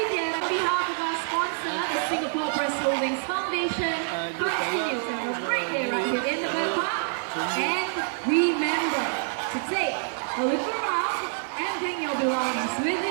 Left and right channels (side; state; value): left; silent; digital silence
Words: Theatre. On behalf of our sponsor, the Singapore Press Holdings Foundation, continues to have a great day right here in the bird park. And remember to take a look around and bring your belongings with